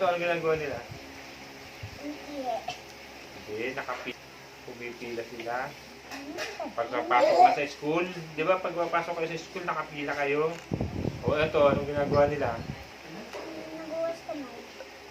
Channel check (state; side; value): identical; both; correlation 1.00